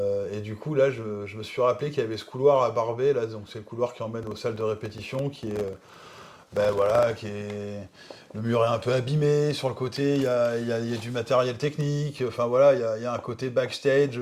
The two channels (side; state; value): both; identical; correlation 1.00